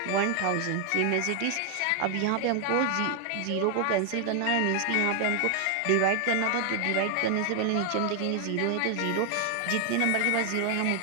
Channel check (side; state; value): both; different; correlation 0.00